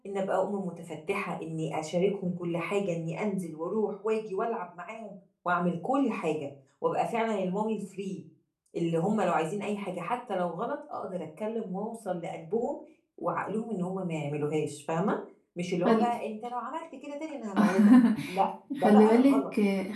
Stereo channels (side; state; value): both; identical; correlation 1.00